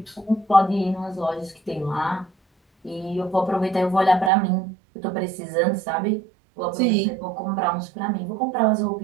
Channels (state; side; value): drops out; left; at 4.3 s